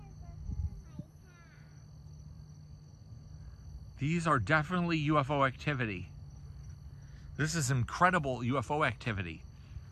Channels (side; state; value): both; identical; correlation 1.00